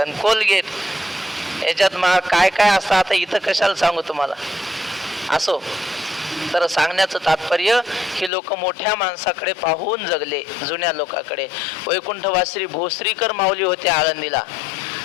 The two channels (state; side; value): drops out; right; at 8.3 s